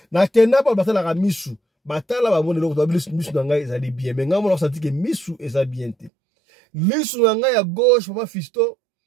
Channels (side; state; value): left; drops out; at 6.1 s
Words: na kenda pa batala ka misu batala ba mona loko misu na ngai ezali bien mais ngai mona senti que misu eza bien te lisu na ngai ya gauche papa Fiston